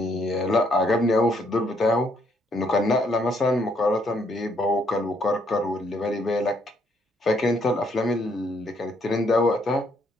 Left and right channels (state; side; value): normal; both; correlation 0.70